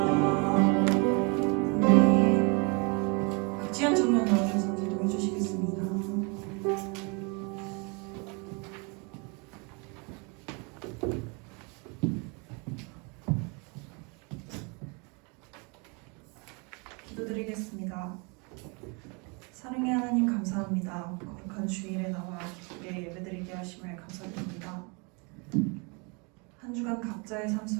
박지현 청년 나오셔서 기도해 주시겠습니다. 기도드리겠습니다. 사랑의 하나님 감사합니다. 거룩한 주일에 나와 기쁘게 예배드리게 하심을 감사드립니다. 한 주간 각자의 삶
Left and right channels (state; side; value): quieter; left; 32.0 dB